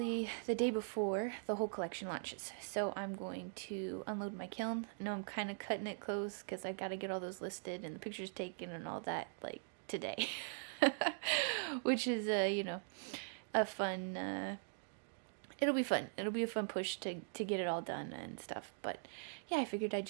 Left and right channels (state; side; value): silent; left; digital silence